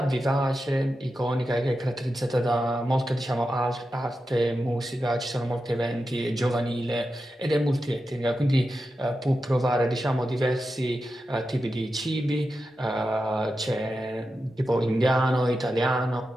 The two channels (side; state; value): both; normal; correlation 0.90